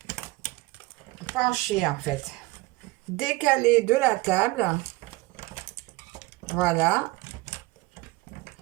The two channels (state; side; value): quieter; left; 21.7 dB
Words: penché, en fait. Décalé de la table. Voilà.